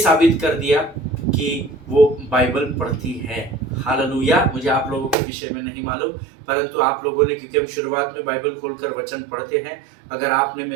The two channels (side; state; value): left; drops out; at 5.2 s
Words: कर दिया कि वो बाइबल पढ़ती है। हालेलुया। मुझे आप लोगों के विषय में नहीं मालूम, परंतु आप लोगों ने, क्योंकि हम शुरुआत में बाइबल खोलकर वचन पढ़ते हैं, अगर आपने